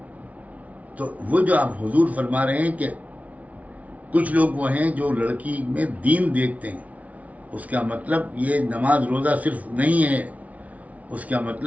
تو وہ جو آپ حضور فرما رہے ہیں کہ کچھ لوگ وہ ہیں جو لڑکی میں دین دیکھتے ہیں. اس کا مطلب یہ نماز روزہ صرف نہیں ہے، اس کا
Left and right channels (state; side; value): late; left; 0.069 ms